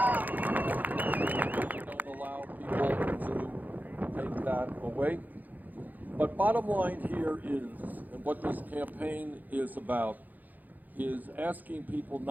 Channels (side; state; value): left; late; 0.083 ms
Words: way. But bottom line here is, and what this campaign is about, is asking people